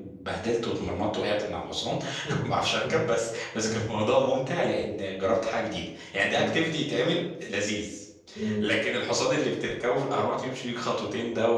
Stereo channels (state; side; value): identical; both; correlation 1.00